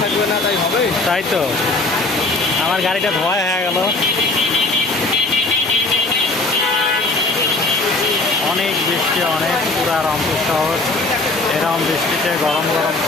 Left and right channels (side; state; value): right; quieter; 3.1 dB